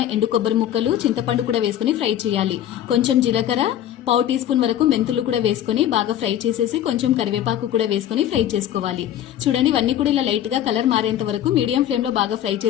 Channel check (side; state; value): right; quieter; 11.2 dB